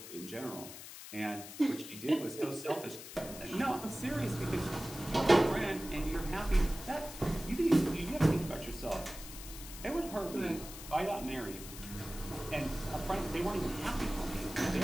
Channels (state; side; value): noise; left; hiss, 12 dB below the sound